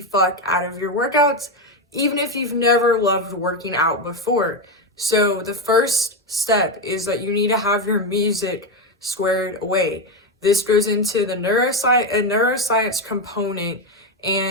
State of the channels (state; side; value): normal; both; correlation 0.10